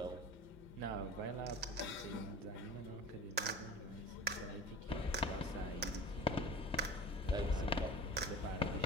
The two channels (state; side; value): normal; both; correlation 0.37